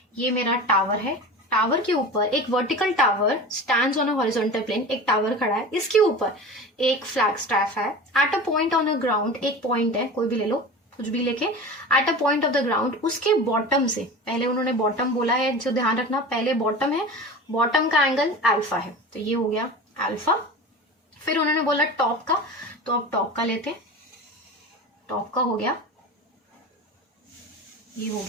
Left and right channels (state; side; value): normal; both; correlation 0.32